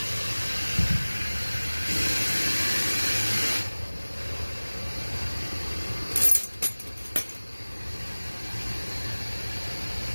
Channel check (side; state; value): both; inverted; correlation -1.00